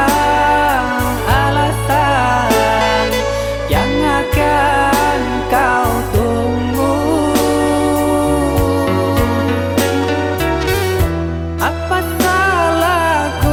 alasan yang akan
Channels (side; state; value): both; identical; correlation 1.00